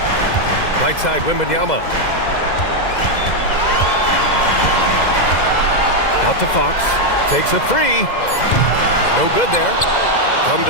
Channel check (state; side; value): late; right; 2.0 ms